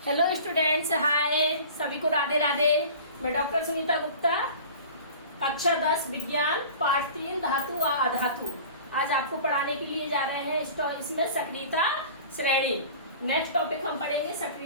हेलो स्टूडेंट्स, हाय सभी को राधे राधे। मैं डॉक्टर सुनीता गुप्ता, कक्षा 10 विज्ञान पाठ 3 धातु व अधातु आज आपको पढ़ाने के लिए जा रहे हैं। इसमें सक्रियता श्रेणी। नेक्स्ट टॉपिक हम पढ़ेंगे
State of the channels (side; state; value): both; inverted; correlation -0.41